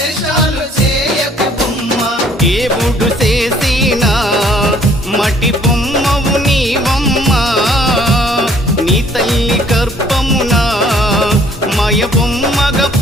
చేయకు బొమ్మ దేవుడు చేసిన మటి బొమ్మవు నీవమ్మ నీ తల్లి గర్భమున మయ బొమ్మగా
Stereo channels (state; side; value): normal; both; correlation 0.60